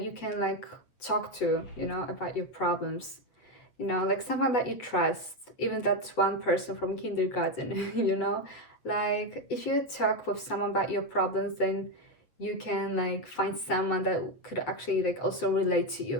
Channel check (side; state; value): right; late; 8.2 ms